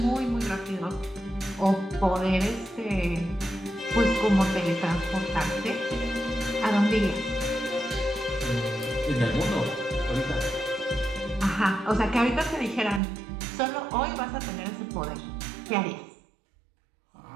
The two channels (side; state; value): left; drops out; at 13.0 s